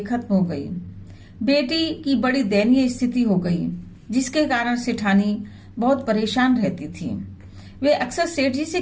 हो गई। बेटी की बड़ी दयनीय स्थिति हो गई, जिसके कारण सेठानी बहुत परेशान रहती थी। वे अक्सर सेठ जी से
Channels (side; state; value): both; identical; correlation 1.00